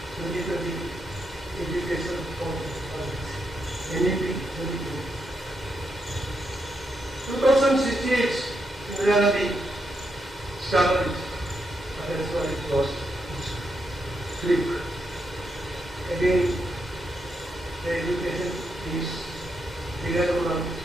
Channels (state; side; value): normal; both; correlation 0.81